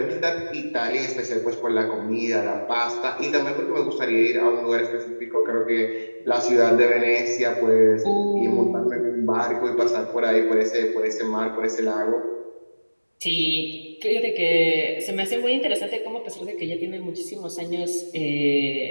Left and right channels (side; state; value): both; inverted; correlation -1.00